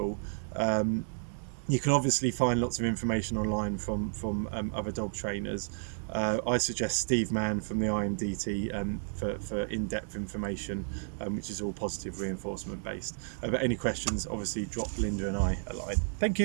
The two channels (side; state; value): left; silent; digital silence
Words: You can obviously find lots of information online from other dog trainers. I suggest Steve Mann from the IMDT for in-depth information, which is all positive reinforcement based. But any questions, obviously drop Linda and I a line. Thank